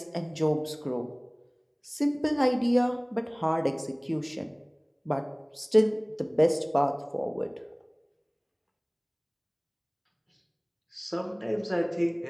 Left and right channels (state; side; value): identical; both; correlation 1.00